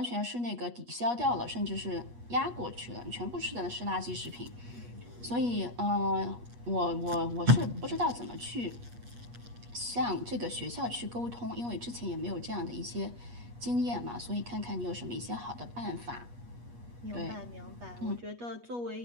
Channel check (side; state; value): left; late; 8.3 ms